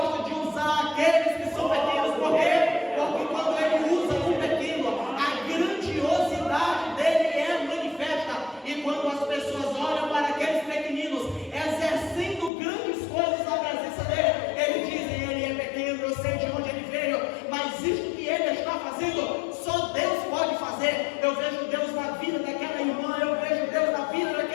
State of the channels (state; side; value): drops out; right; at 12.5 s